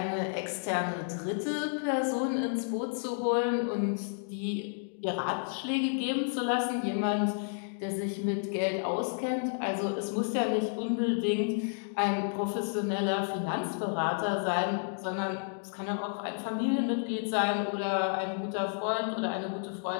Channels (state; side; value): silent; right; digital silence